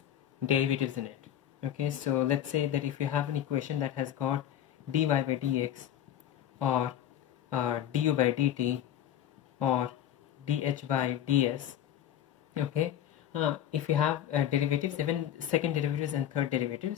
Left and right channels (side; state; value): right; quieter; 10.7 dB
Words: derivatives in it. Okay, so let's say that if you have an equation that has got dy by dx or du by dt or dh by ds, okay, if you have derivatives, even second derivatives and third